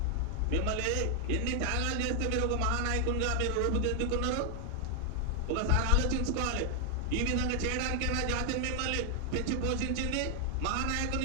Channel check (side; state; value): both; different; correlation 0.00